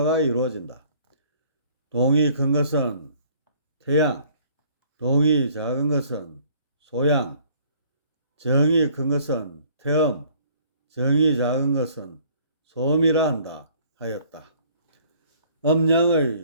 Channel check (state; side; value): inverted; both; correlation -0.57